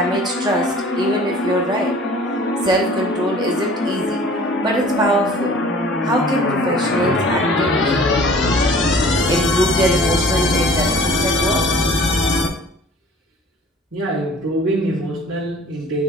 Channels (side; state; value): both; normal; correlation 0.48